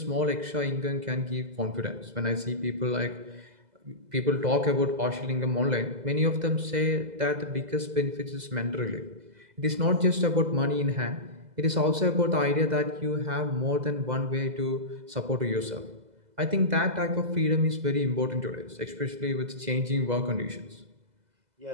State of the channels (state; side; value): late; left; 2.0 ms